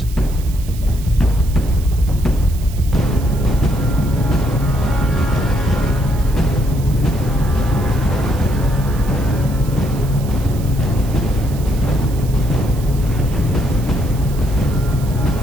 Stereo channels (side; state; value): right; noise; hiss, 18 dB below the sound